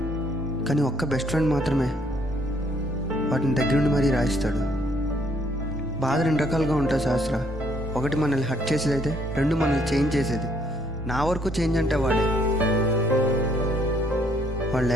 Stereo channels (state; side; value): normal; both; correlation 0.67